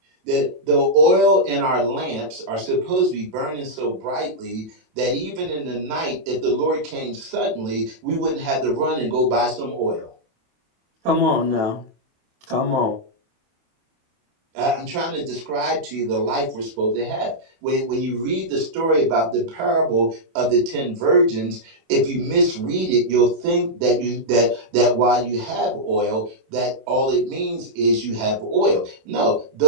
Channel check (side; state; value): left; late; 27 ms